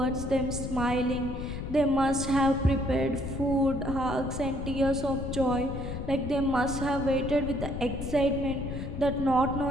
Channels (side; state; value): left; noise; rumble, 6 dB below the sound